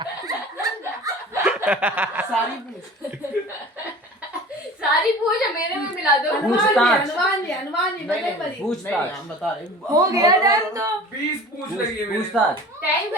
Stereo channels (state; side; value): normal; both; correlation 0.41